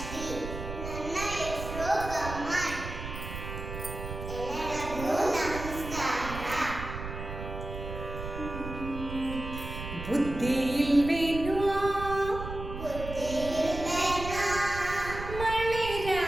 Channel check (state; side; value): noise; right; rumble, 8 dB below the sound